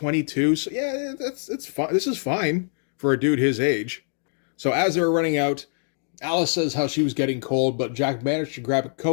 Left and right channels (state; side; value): silent; right; digital silence